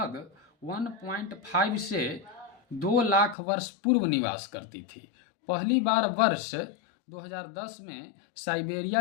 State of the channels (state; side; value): drops out; right; at 3.4 s